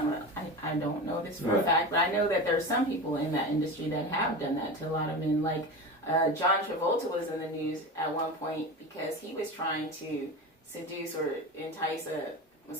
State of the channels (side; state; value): both; normal; correlation 0.26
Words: I don't know this for a fact, but I know that there's some people in that industry that have done that to a lot of men. Like John Travolta was in the news at one point because he was trying to seduce or entice a